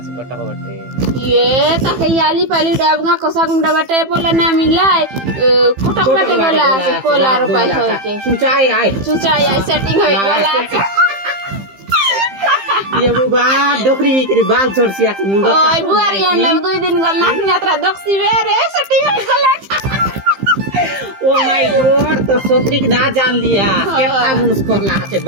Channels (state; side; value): late; left; 15 ms